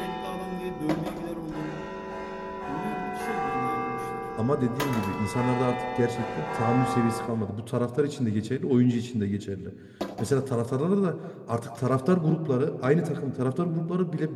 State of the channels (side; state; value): both; identical; correlation 1.00